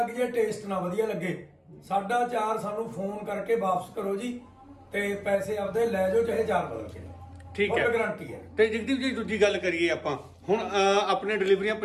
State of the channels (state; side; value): identical; both; correlation 1.00